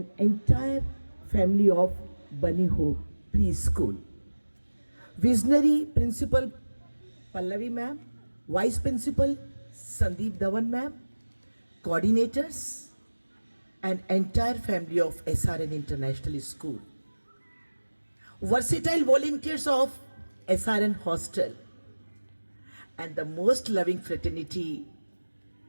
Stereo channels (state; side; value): inverted; both; correlation -1.00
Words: entire family of Bunny Hope Preschool. Visionary Principal Pallavi ma'am, Vice Principal Sandeep Dhawan ma'am, coordinators, and entire family of SRN International School. Versatile volunteers of SRN Hostel, and the most loving fraternity,